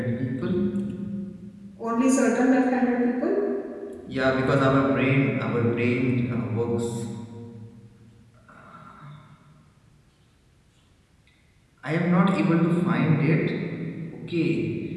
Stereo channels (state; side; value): identical; both; correlation 1.00